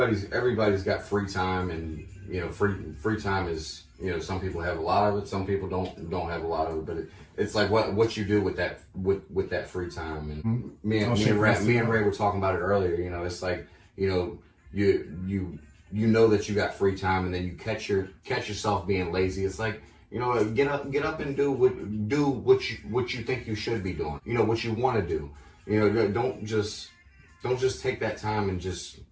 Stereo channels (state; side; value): identical; both; correlation 1.00